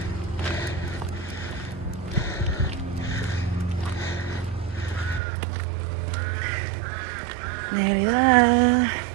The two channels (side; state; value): left; drops out; at 5.2 s